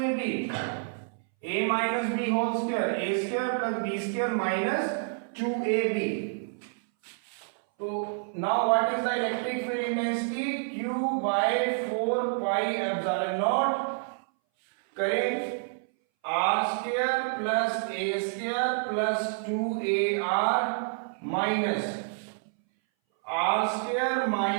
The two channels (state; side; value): silent; left; 59 dB below the other